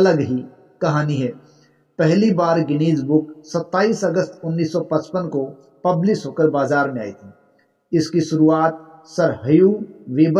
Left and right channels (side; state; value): both; identical; correlation 1.00